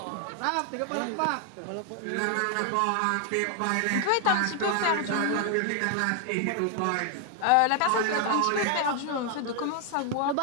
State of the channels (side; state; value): both; different; correlation 0.00